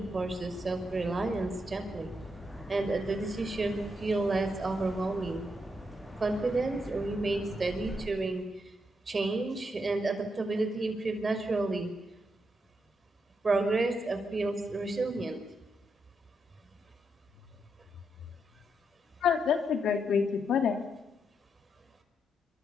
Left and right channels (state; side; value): normal; both; correlation 0.81